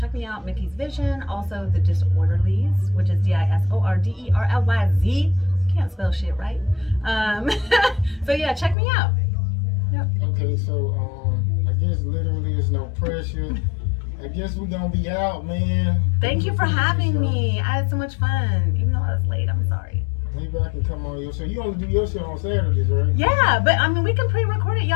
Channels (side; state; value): right; drops out; at 8.8 s